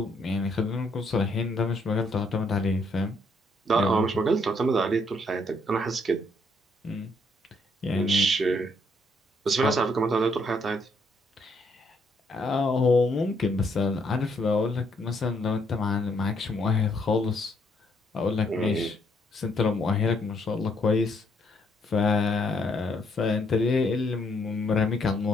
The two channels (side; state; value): both; normal; correlation 0.71